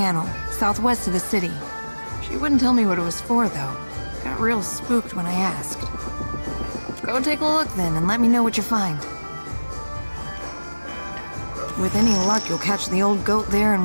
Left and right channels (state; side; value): inverted; both; correlation -1.00